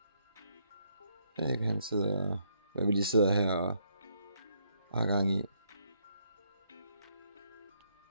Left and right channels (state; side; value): inverted; both; correlation -0.73